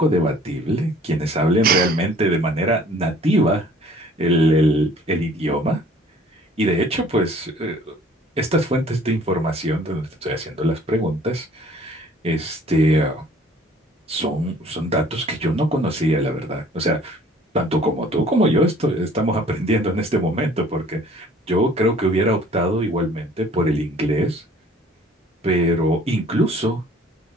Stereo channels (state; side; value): normal; both; correlation 0.54